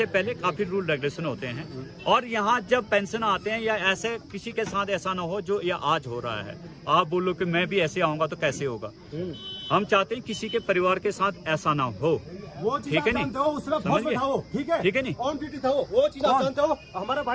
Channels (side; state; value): both; identical; correlation 1.00